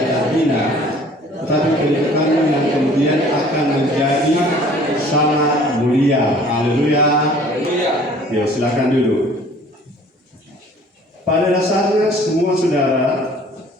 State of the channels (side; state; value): both; normal; correlation 0.52